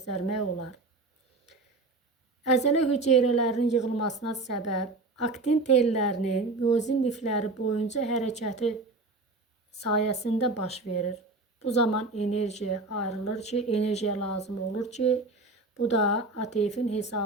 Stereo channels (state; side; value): quieter; left; 3.2 dB